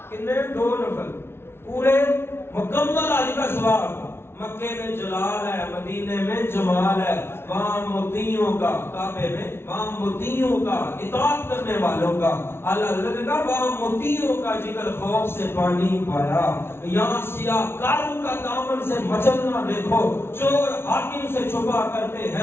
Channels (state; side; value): late; right; 0.12 ms